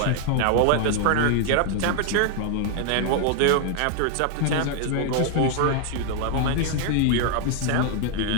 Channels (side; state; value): both; different; correlation 0.00